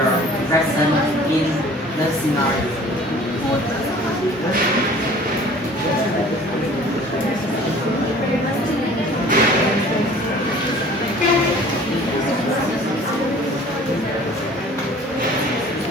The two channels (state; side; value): normal; both; correlation 0.48